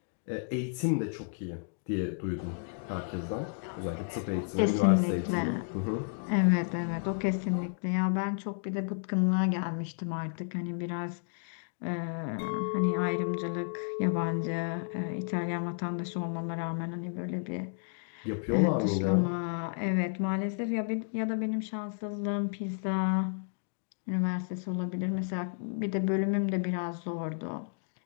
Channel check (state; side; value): silent; right; digital silence